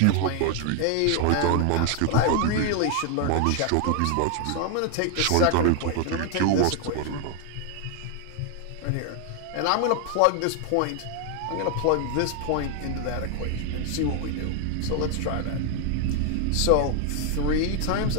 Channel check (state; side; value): different; both; correlation 0.00